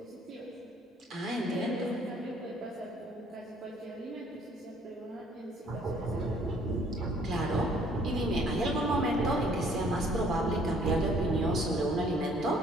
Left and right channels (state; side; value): normal; both; correlation 0.60